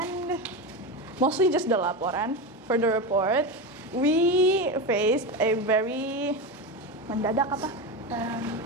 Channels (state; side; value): normal; both; correlation 0.18